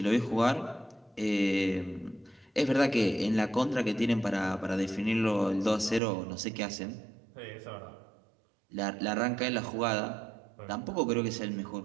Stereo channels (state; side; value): drops out; left; at 6.0 s